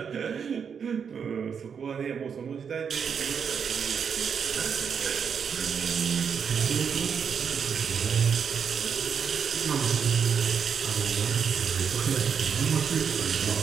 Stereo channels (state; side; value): quieter; left; 6.8 dB